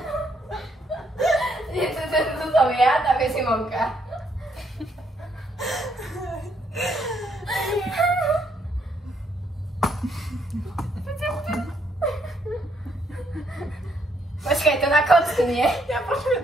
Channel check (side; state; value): both; normal; correlation 0.72